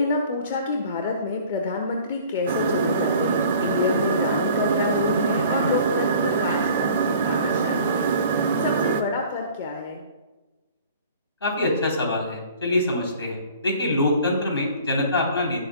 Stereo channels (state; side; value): inverted; both; correlation -0.48